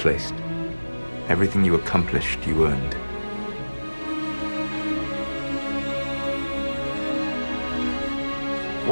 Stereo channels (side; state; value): both; inverted; correlation -1.00